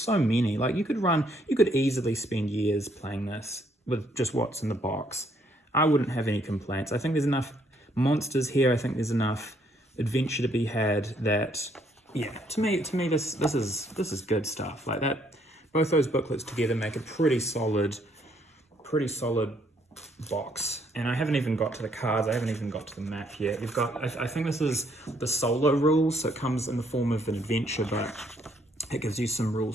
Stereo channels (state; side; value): normal; both; correlation 0.69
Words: so many. Like you could easily spend years playing this with just what's in the box. I wouldn't have any complaints. I think there's enough monsters here. I think there's enough adventure to be had that, yeah, to me this is good stuff. Like that, both those booklets together make a pretty solid box. And I haven't even got to the cards. I haven't even got to the map yet. You've got, I think this is the solo rules, so it comes in the form of an adventure, but it gives you some